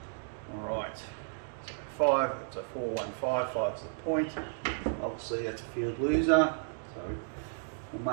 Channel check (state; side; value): silent; left; digital silence